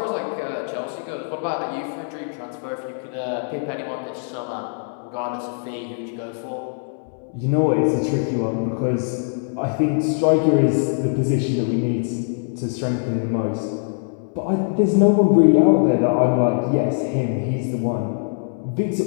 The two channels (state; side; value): silent; right; digital silence